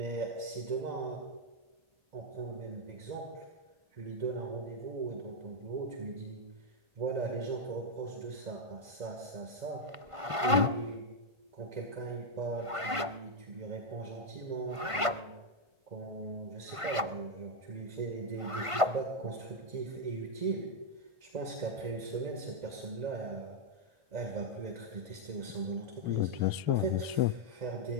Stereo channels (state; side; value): late; left; 1.5 ms